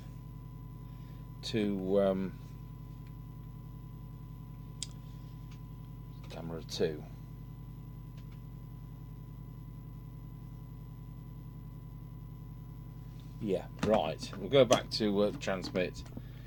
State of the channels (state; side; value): identical; both; correlation 1.00